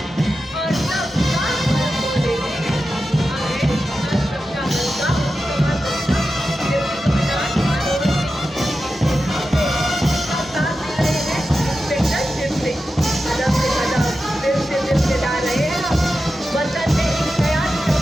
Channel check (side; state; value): both; normal; correlation 0.91